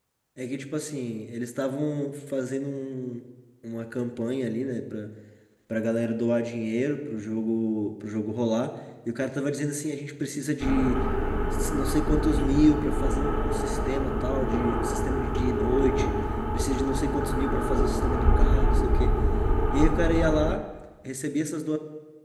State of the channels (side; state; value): both; identical; correlation 1.00